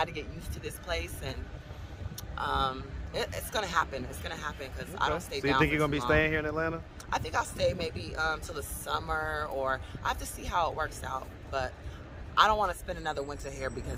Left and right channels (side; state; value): both; identical; correlation 1.00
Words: to get used to this place, and It's gonna happen. It's gonna happen because I don't stay So you down think for you're gonna too be long. staying here in Atlanta? I think I'll stay maybe till the summer, or I have to see how it works out. But I don't want to spend another winter here because